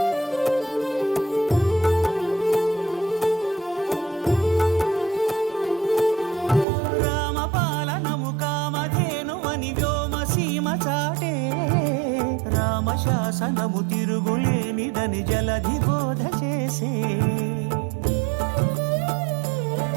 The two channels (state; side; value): drops out; left; at 6.7 s